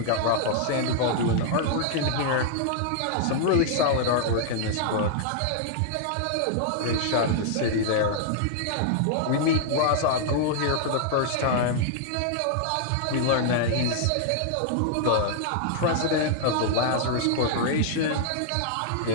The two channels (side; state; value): both; different; correlation -0.01